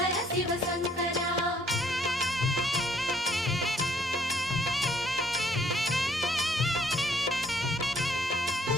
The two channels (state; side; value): normal; both; correlation 0.65